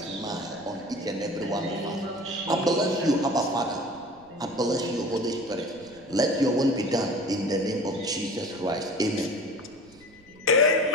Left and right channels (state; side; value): noise; right; rumble, 28 dB below the sound